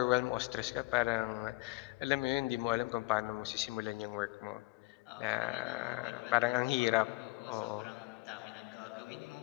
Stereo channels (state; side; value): quieter; right; 21.6 dB